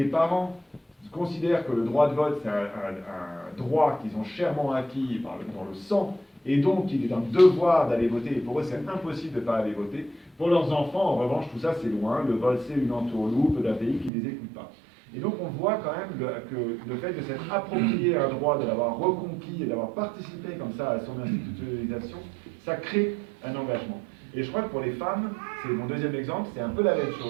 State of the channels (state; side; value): drops out; left; at 14.1 s